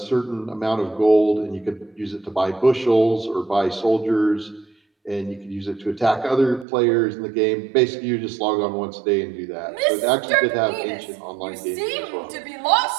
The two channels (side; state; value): left; drops out; at 6.7 s